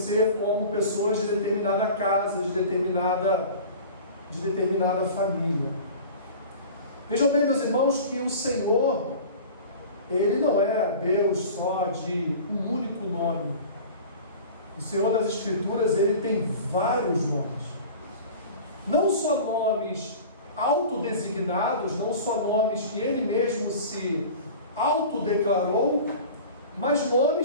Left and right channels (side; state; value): both; inverted; correlation -0.38